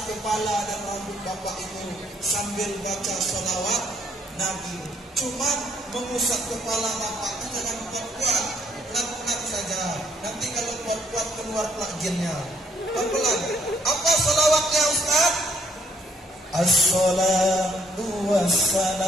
kepala dan rambut bapak itu sambil baca sholawat Nabi. Cuma mengusap kepala bapak itu jangan kuat-kuat, pelan-pelan saja. Nanti kalau kuat-kuat keluar jinnya. Pelan-pelan. Apa sholawatnya Ustaz? As-salatu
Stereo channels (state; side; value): normal; both; correlation 0.67